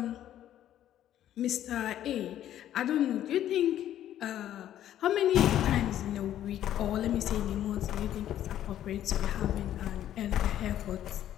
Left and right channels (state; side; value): quieter; right; 11.7 dB